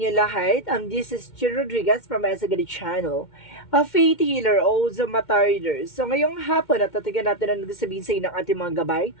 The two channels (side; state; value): right; late; 2.1 ms